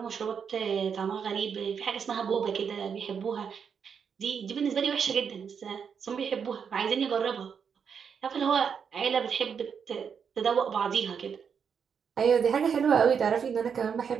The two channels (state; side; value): quieter; left; 6.8 dB